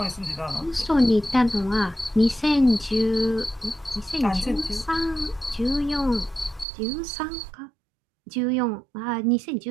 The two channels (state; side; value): drops out; left; at 6.7 s